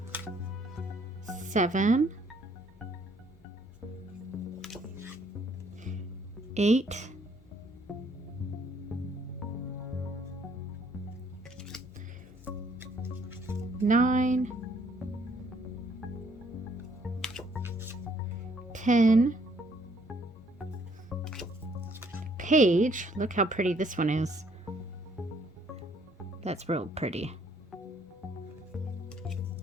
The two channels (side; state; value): both; normal; correlation 0.65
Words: 7, 8, 9, 10. Page. Look how pretty this one is. That's real pretty.